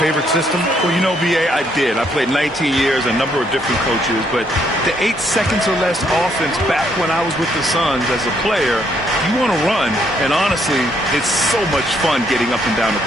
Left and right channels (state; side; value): normal; both; correlation 0.71